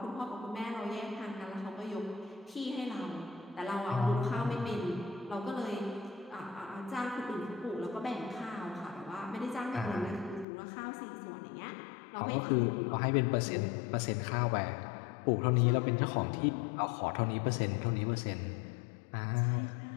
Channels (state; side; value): drops out; right; at 10.5 s